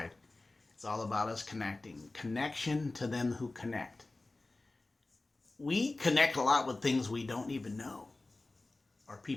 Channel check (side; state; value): right; quieter; 3.1 dB